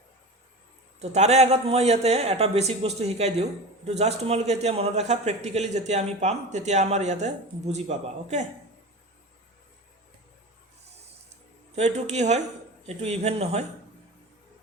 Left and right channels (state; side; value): normal; both; correlation 0.30